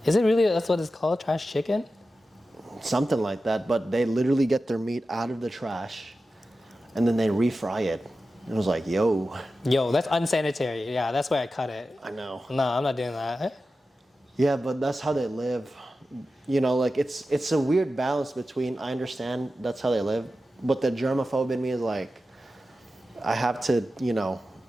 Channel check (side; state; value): both; normal; correlation 0.93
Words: Is it really? That's what it's called, trash chicken. something like that. But they literally get their meat out of the trash, and then they refry it. It was like, yo, Yo, that's unsanitary. Yeah, that's why I cut it. I know. No, I'm not doing that. Yeah, but that's how they live. You know, like it's a weird balance between I understand that's how they live, but the germaphobe in me is like, I have to, you know,